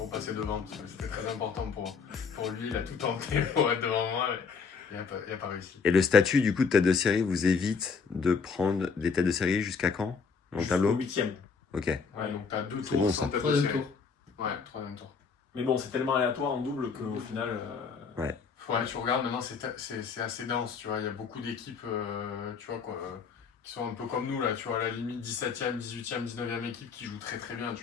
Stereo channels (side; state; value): right; quieter; 5.5 dB